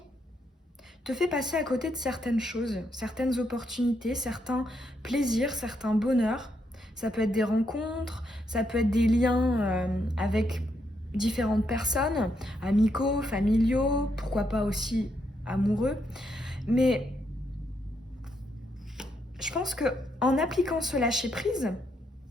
te fait passer à côté de certaines choses, certaines opportunités, certains plaisirs, certains bonheurs. Ça peut être des rencontres, ça peut être des liens avec différentes personnes, amicaux, familiaux, pourquoi pas aussi amoureux. Mais je pense qu'en appliquant ce lâcher-prise,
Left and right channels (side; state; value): both; normal; correlation 0.78